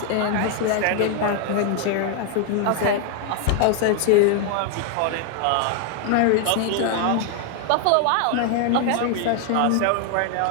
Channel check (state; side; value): different; both; correlation 0.00